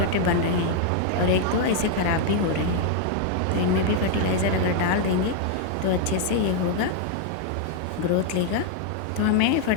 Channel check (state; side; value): different; both; correlation 0.00